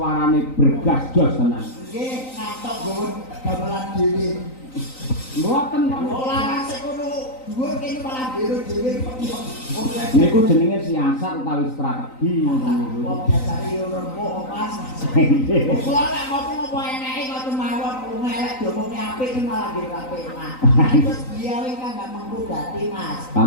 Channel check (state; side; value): late; right; 3.9 ms